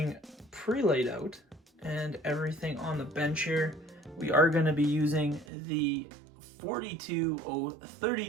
pre-laid out and everything on the bench here. We are going to be using the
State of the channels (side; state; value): left; drops out; at 5.5 s